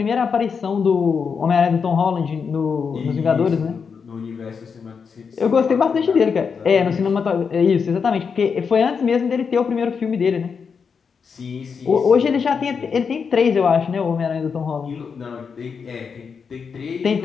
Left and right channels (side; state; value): right; quieter; 5.9 dB